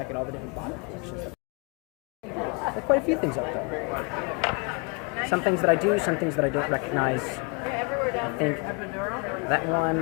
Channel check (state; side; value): quieter; right; 33.7 dB